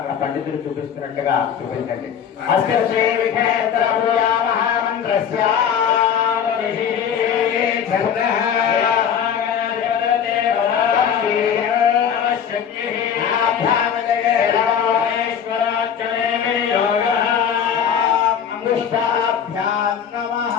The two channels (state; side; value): quieter; right; 8.2 dB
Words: పండితులు చూపిస్తున్నట్టుగా చూపించండి.